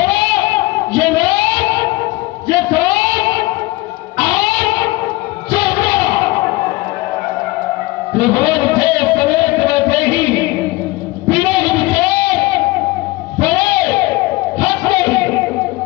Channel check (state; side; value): quieter; right; 20.5 dB